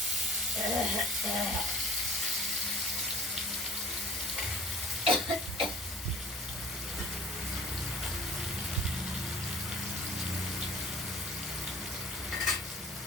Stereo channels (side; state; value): both; normal; correlation 0.47